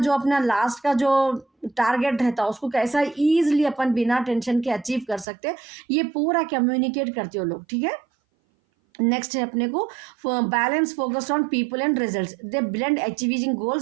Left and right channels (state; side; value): drops out; left; at 5.2 s